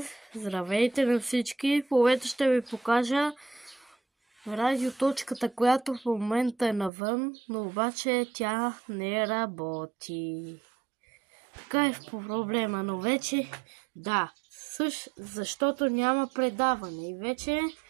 Здравейте на всички! В момента ще ви покажа радиоточката, която в момента е навън, но обаче тя не работи. Така е в проблема, но вече да, защото няма предаване и вече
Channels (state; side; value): drops out; left; at 6.9 s